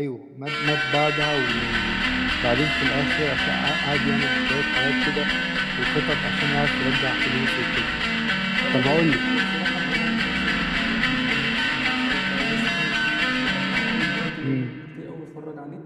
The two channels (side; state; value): both; identical; correlation 1.00